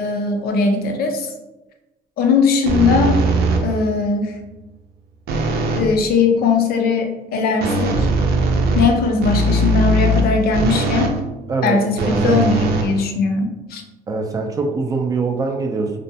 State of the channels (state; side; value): normal; both; correlation 0.49